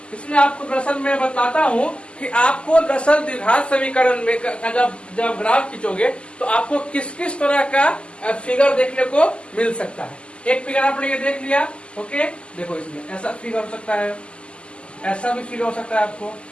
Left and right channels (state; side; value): late; right; 0.053 ms